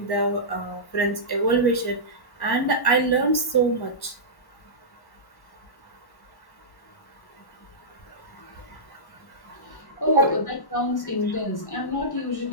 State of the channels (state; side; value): late; right; 1.1 ms